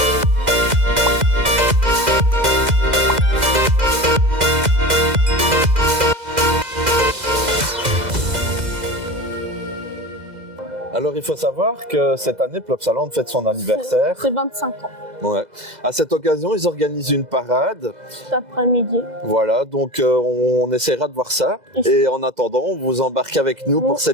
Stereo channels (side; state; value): left; late; 2.0 ms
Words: Alors, il faut savoir que cette année, Plopsaland fête son anniversaire. C'est 25 ans. Ouais. À cette occasion, ils organisent une parade. Cet après-midi. Voilà, donc on essaiera de voir ça. Et en attendant, on vous embarque avec nous pour